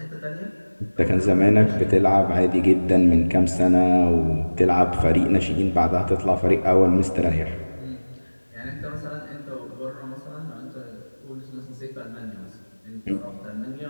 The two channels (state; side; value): inverted; both; correlation -1.00